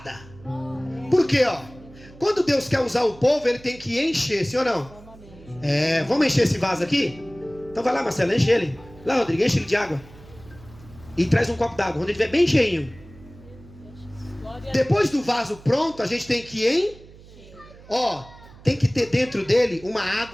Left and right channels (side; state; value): right; noise; hum, 21 dB below the sound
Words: Por quê, ó? Quando Deus quer usar o povo, ele tem que encher, sim ou não? Vamos encher esse vaso aqui? Então vai lá, Marcelo, enche ele. Lá, Rodrigo, enche ele de água. E traz um copo d'água, quando ele estiver bem cheinho. Depois do vaso pronto, a gente tem que tem que ter dentro dele uma